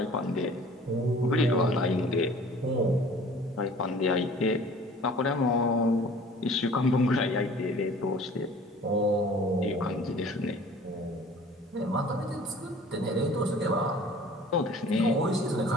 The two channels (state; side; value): normal; both; correlation 0.48